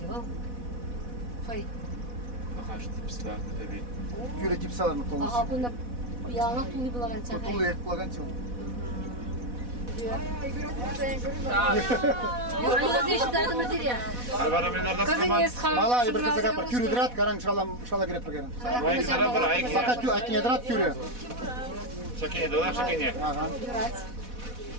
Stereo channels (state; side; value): late; left; 4.1 ms